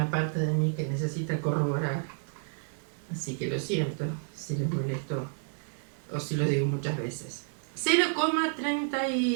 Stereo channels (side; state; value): left; silent; digital silence